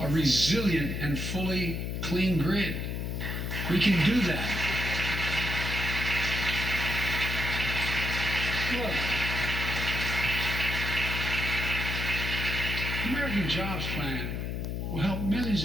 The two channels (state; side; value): noise; left; hum, 3 dB below the sound